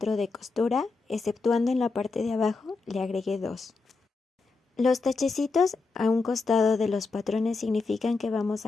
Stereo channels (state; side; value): quieter; right; 4.0 dB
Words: de costura, exceptuando en la parte de abajo le agregué 2. Los tachecitos a un costado de los patrones significan que vamos